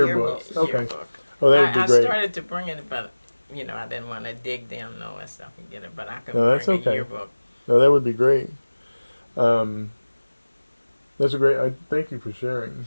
yearbooks. Okay. Yearbook. Oh, that would be I great. started to bring it, but I didn't want to dig down and all that stuff and get it. But I could No, that's bring okay. a yearbook. No, that would be great. That's a great. I thank you for sharing.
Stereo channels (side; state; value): both; inverted; correlation -1.00